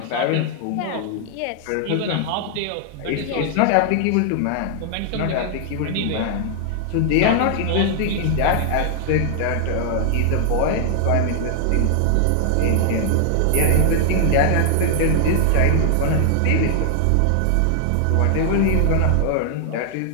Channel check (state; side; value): different; both; correlation 0.00